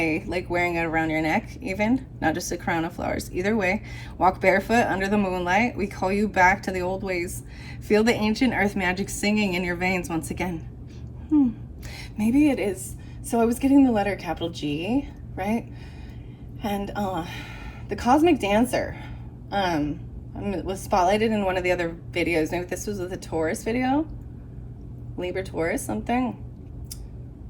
like wearing it around your neck even, not just a crown of flowers. Either way, walk barefoot under the moonlight. We call you back to the old ways. Feel the ancient earth magic singing in your veins once again. Maybe it is. So I was getting the letter capital G, right? And the cosmic dancer was spotlighted in one of the other videos. Maybe this was with a Taurus video, Libra Taurus something.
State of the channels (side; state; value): both; identical; correlation 1.00